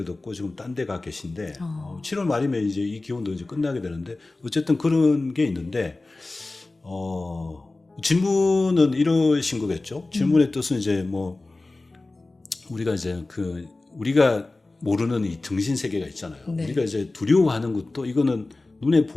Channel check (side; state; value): right; quieter; 3.1 dB